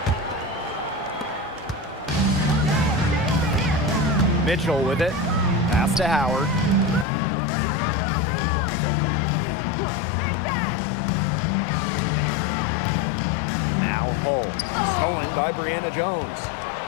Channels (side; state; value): right; drops out; at 7.1 s